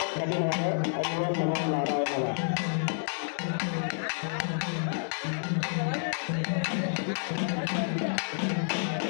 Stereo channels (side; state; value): right; silent; 58 dB below the other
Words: கட்டினாங்க. அதுதான் நமோ நாராயணா.